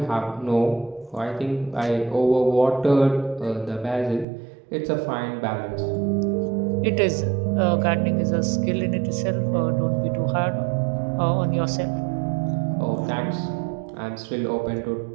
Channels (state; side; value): drops out; left; at 4.2 s